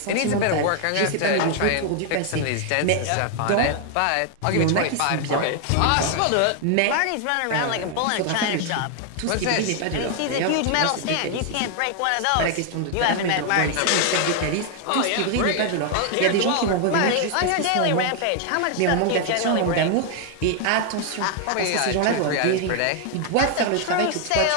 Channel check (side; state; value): both; different; correlation 0.00